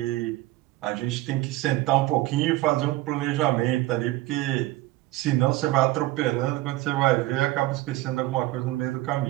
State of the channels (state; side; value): quieter; left; 17.6 dB